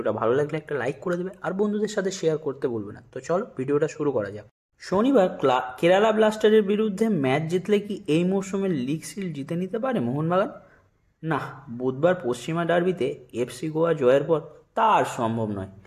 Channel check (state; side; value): identical; both; correlation 1.00